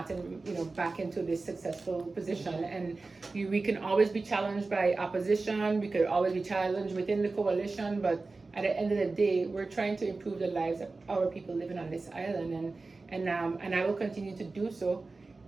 you know, back into this successful position. And we can always be challenged by opposition. We could always be challenged within the coalition. But at the end of the day, we're trying to improve the lives of our people living on this island, and I will continue to do so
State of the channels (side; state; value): left; quieter; 3.7 dB